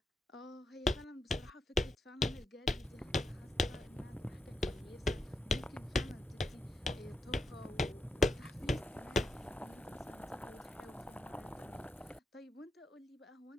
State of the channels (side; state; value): both; normal; correlation 0.83